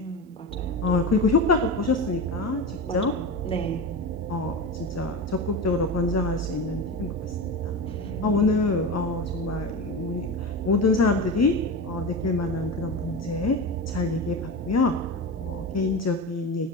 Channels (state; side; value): normal; both; correlation 0.24